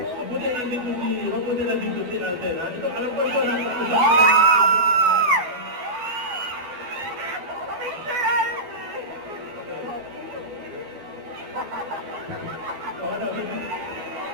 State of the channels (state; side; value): late; left; 12 ms